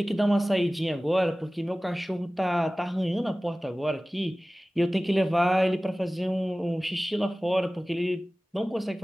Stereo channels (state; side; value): normal; both; correlation 0.97